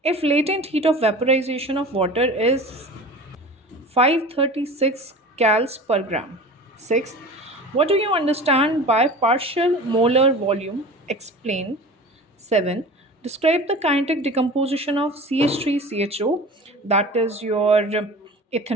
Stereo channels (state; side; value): normal; both; correlation 0.37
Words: if latent heat of vaporization of water is 536 cals per gram. Sixth, what do you understand by partial molar volume? Explain. 7. Describe the kinetic decomposition of CH3CHO, that is your